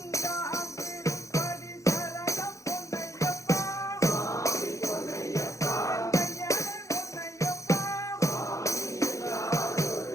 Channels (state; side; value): late; right; 0.15 ms